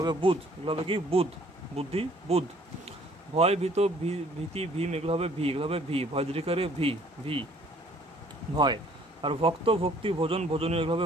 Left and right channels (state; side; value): normal; both; correlation 0.59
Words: হবে বুধ, এগুলো হবে কি বুধ, বুদ্ধি, বুধ। ভয়, ভীত, ভীতি, ভীম এগুলো হবে ভি, এগুলো হবে ভি, ভয় দীর্ঘিকারে ভি, ভি, ভয়। আর ভক্ত, ভক্তি, ভোজন, ভোজনীয় এগুলো